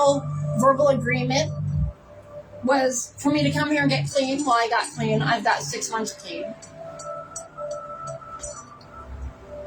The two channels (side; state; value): both; identical; correlation 1.00